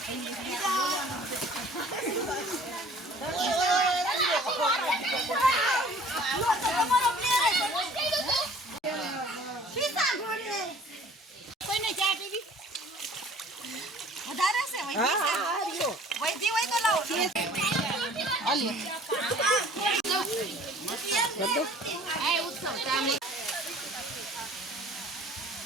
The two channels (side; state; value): both; normal; correlation 0.51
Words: કોઈને ચા પીવી વધારે છે વૈધી હોય તો લાવો